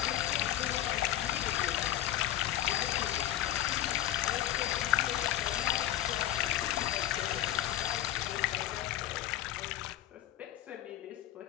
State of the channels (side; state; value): right; quieter; 13.2 dB